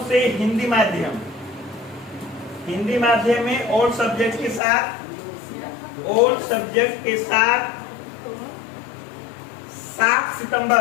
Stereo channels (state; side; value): drops out; right; at 4.6 s